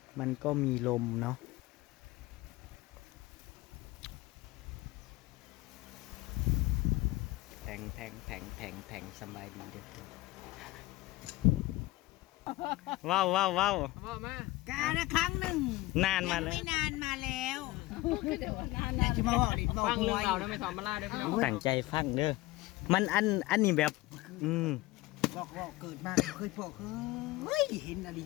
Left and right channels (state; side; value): quieter; right; 18.9 dB